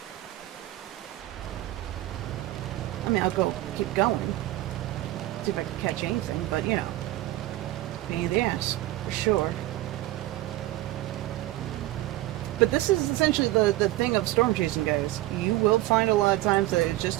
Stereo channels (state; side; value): quieter; left; 16.3 dB